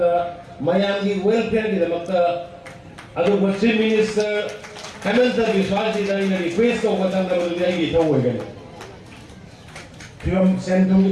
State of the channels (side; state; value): both; identical; correlation 1.00